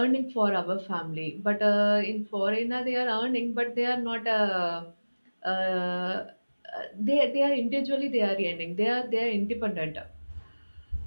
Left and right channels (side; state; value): both; inverted; correlation -1.00